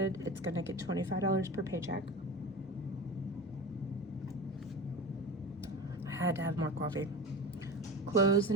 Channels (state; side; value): normal; both; correlation 0.30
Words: It's going to get $25 per paycheck. I had to have more coffee. Clothes